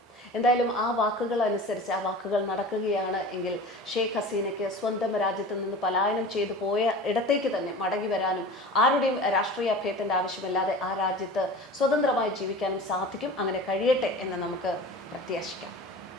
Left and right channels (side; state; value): both; normal; correlation 0.36